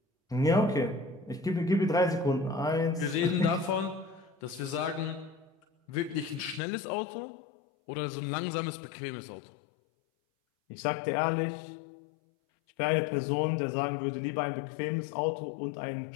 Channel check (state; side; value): drops out; right; at 6.6 s